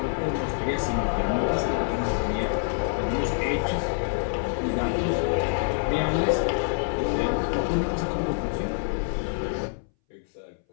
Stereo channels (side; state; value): right; silent; 61 dB below the other